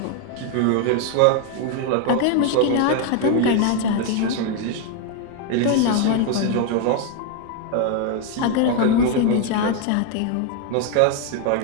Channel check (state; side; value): different; both; correlation 0.01